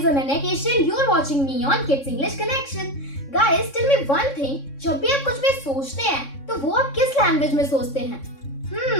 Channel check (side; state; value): right; late; 3.6 ms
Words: Ananya Keshan. You are watching me on Kids English Connection. Guys, tell me one thing. जब भी आप कुछ भी सोचते हैं, तो वो आप किस लैंग्वेज में सोचते हैं?